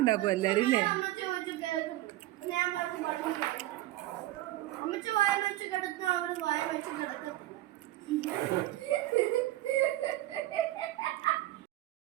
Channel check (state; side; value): quieter; left; 15.9 dB